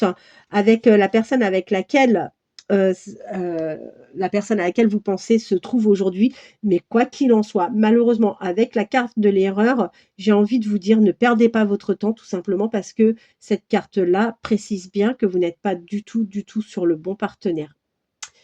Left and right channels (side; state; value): both; identical; correlation 1.00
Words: avec, la personne avec laquelle, la personne à laquelle vous pensez se trouve aujourd'hui. Mais quoi qu'il en soit, malheureusement, avec la carte de l'erreur, j'ai envie de vous dire: «Ne perdez pas votre temps», tout simplement parce que cette carte-là précise bien que vous n'êtes pas du tout, du tout sur le bon partenaire.